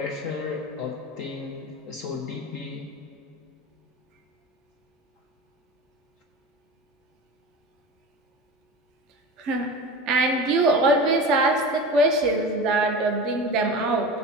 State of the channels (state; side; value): normal; both; correlation 0.30